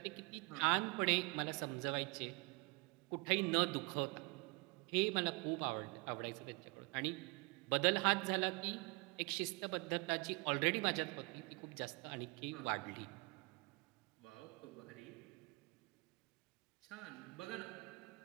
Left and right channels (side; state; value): left; quieter; 28.5 dB